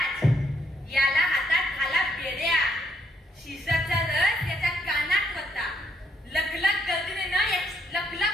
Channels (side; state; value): both; normal; correlation 0.72